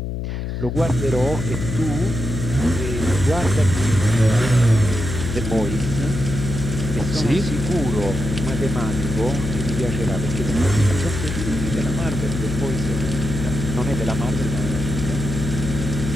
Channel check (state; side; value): noise; left; hum, 4 dB below the sound